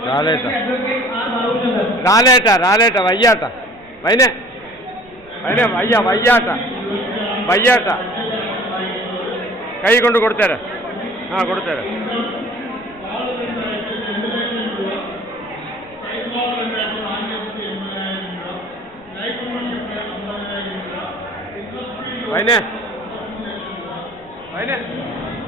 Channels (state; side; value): noise; right; rumble, 27 dB below the sound